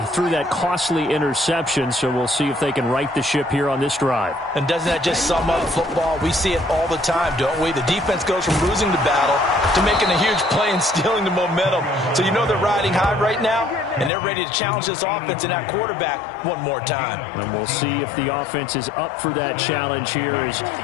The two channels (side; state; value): right; drops out; at 14.1 s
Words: threw that costly interception, so we'll see if they can right the ship here on this drive. And doesn't that just sum up football? We see it all the time, don't we? The defense goes from losing the battle to making a huge play and stealing the momentum. So you know they're riding high right now, and they're ready to challenge this offense and that quarterback one more time. And we'll see if the offense is up for that challenge here as